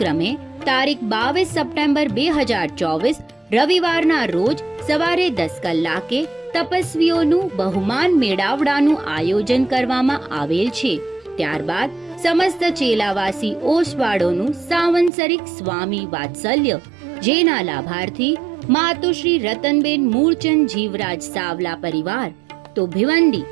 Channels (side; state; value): left; drops out; at 15.1 s